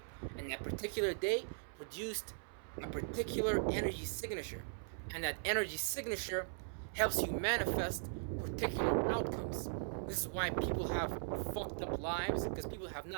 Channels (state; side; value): silent; left; 52 dB below the other